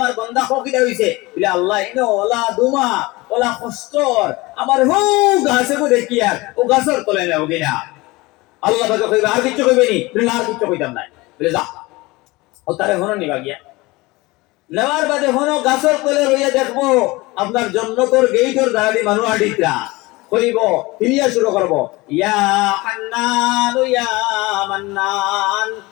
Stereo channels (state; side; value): quieter; right; 22.1 dB